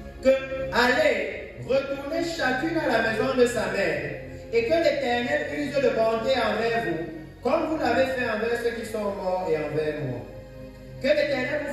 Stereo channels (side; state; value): both; identical; correlation 1.00